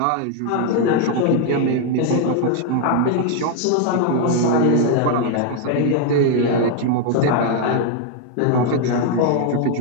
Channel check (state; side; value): different; both; correlation 0.00